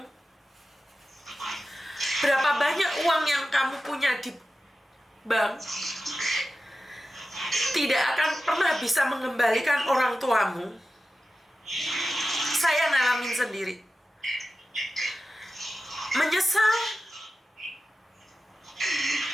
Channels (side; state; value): both; normal; correlation 0.93